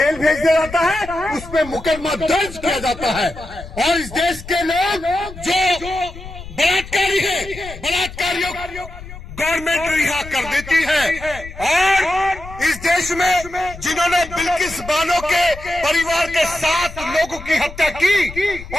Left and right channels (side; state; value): left; noise; rumble, 14 dB below the sound